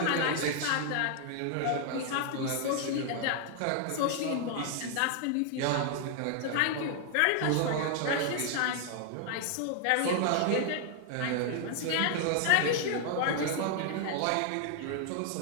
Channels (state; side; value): different; both; correlation 0.00